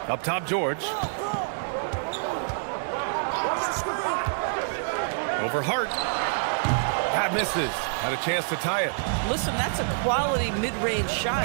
Up top, George. Over Hart. That misses. Had a chance to tie it. Listen, that's a quality mid-range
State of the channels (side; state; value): left; silent; digital silence